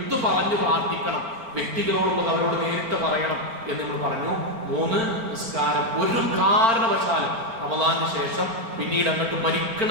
പറഞ്ഞു പ്രാർത്ഥിക്കണം, വ്യക്തികളോടുള്ളത് അവരോട് നേരിട്ട് പറയണം എന്ന് നമ്മൾ പറഞ്ഞു. 3, നിസ്കാരം ഒരു കാരണവശാലും റമദാനിന് ശേഷം പിന്നീട് അങ്ങോട്ട്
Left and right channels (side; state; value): left; late; 4.4 ms